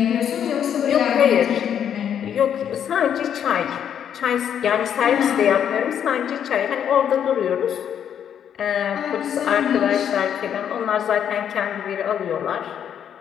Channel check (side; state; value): right; quieter; 8.9 dB